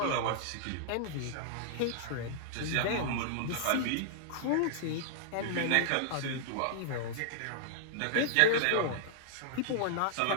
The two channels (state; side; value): different; both; correlation -0.01